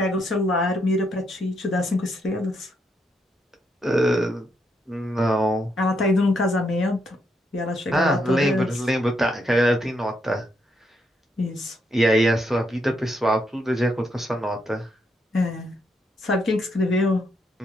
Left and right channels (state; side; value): normal; both; correlation 0.78